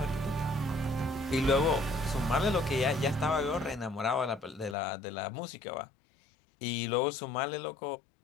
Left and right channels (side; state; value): right; drops out; at 4.8 s